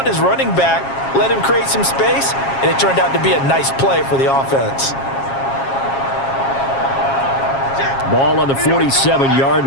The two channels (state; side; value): late; right; 7.4 ms